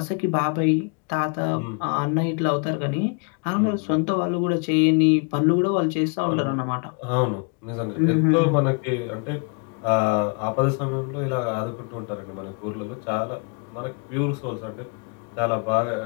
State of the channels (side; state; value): right; quieter; 35.5 dB